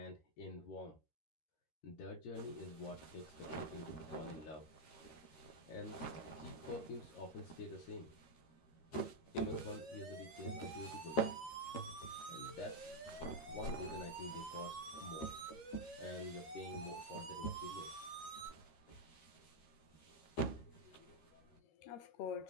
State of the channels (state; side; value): late; right; 13 ms